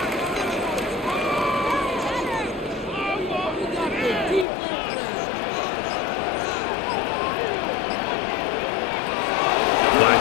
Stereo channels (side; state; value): right; drops out; at 4.5 s